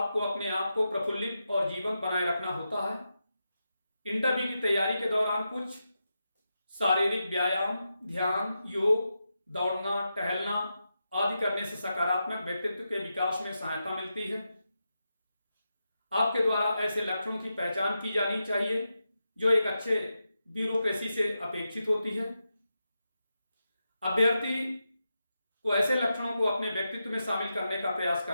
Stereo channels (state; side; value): inverted; both; correlation -0.88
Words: अपने आप को प्रफुल्लित और जीवंत बनाए रखना होता है। इंटरव्यू की तैयारी के दौरान कुछ शारीरिक व्यायाम, ध्यान, योग, दौड़ना, टहलना आदि करने से सकारात्मक व्यक्तित्व के विकास में सहायता मिलती है। आपके द्वारा ऐसे लक्षणों की पहचान की जानी चाहिए जो एक अच्छे ब्यूरोक्रेसी से अपेक्षित होती है। अभ्यर्थी को ऐसे लक्षणों को अपने व्यक्तित्व में शामिल करने का प्रयास